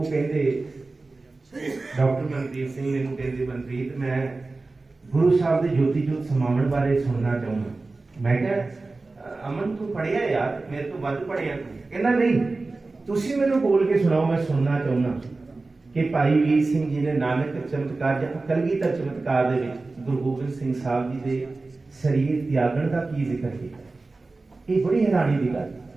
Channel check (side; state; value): left; quieter; 3.5 dB